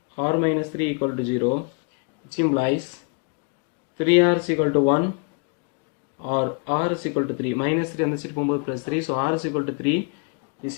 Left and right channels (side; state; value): right; quieter; 36.7 dB